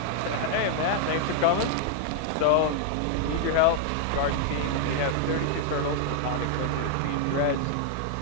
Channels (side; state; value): both; different; correlation 0.00